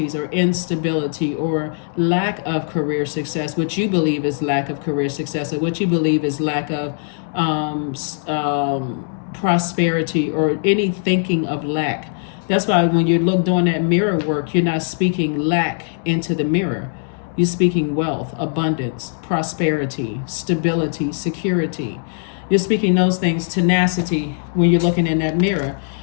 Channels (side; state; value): right; silent; 66 dB below the other